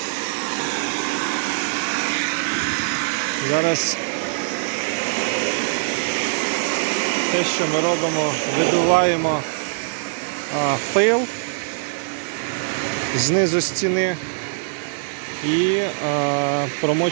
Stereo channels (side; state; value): left; silent; 64 dB below the other